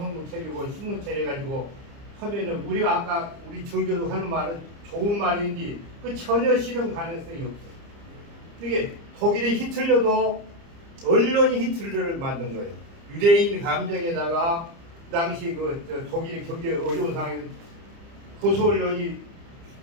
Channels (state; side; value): late; left; 30 ms